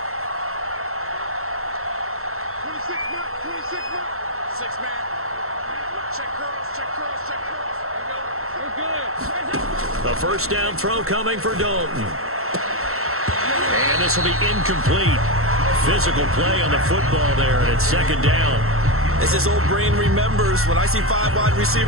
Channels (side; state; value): left; late; 0.63 ms